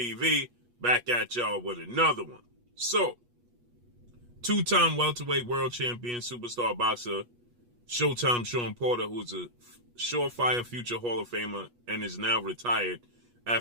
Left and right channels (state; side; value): late; left; 8.3 ms